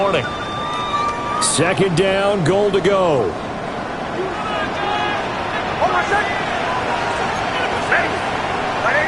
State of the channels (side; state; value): both; identical; correlation 1.00